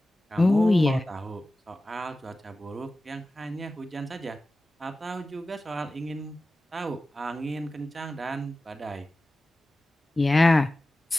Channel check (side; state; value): both; normal; correlation 0.95